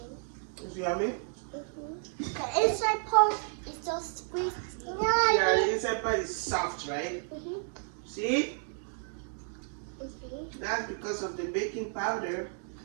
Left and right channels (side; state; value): left; silent; 57 dB below the other